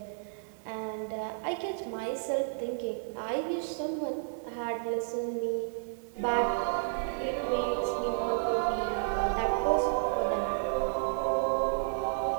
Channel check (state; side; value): silent; left; 57 dB below the other